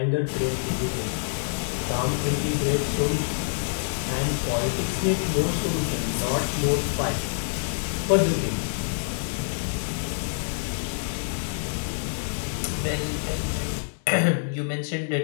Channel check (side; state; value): right; silent; digital silence